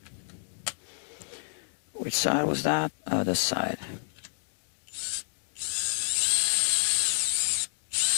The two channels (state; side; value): silent; right; digital silence